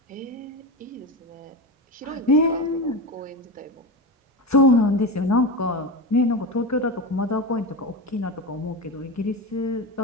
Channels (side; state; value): both; normal; correlation 0.21